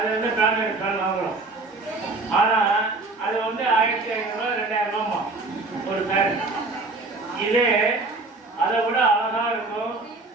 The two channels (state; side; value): quieter; left; 3.3 dB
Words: வந்து பிராண்டட் ஃபேன் வாங்குறோம். ஆனால் அது வந்து 1500 2000 ரூபாமா ஒரு ஃபேன். இதே அதை விட அழகா இருக்கும்,